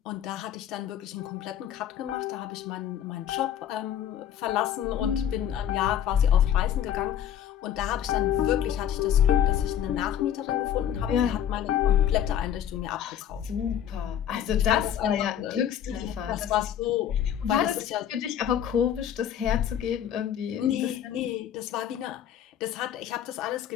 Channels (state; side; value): quieter; right; 10.0 dB